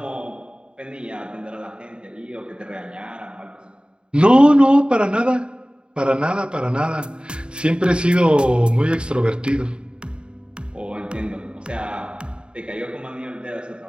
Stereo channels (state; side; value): late; left; 0.052 ms